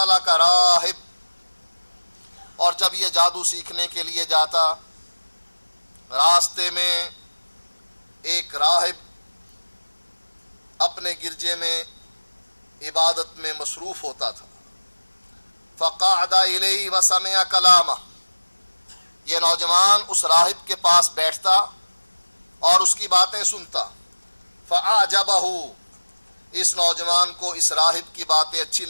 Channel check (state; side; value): inverted; both; correlation -1.00